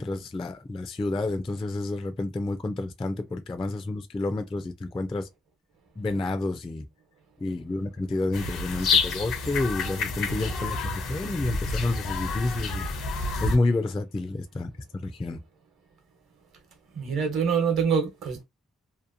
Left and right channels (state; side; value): normal; both; correlation 0.74